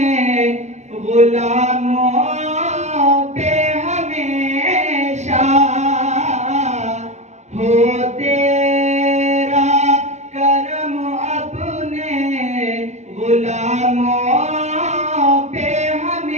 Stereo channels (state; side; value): late; left; 0.33 ms